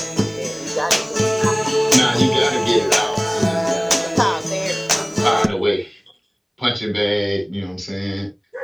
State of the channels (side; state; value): both; identical; correlation 1.00